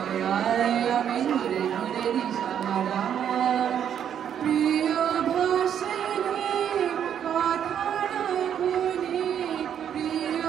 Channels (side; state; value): left; quieter; 9.1 dB